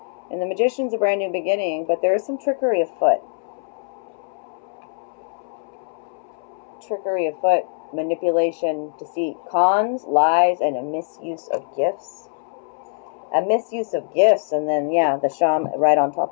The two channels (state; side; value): silent; right; 64 dB below the other